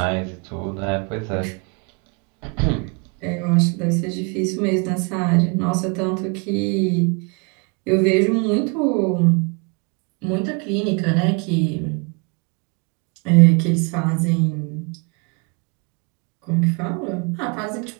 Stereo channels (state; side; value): quieter; left; 32.5 dB